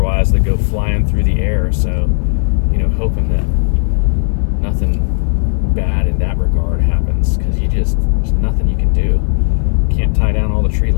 that go flying through the air. So, hoping that nothing bad in that regard happens, because there's nothing you can do. Can't tie down all the tree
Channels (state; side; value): silent; right; digital silence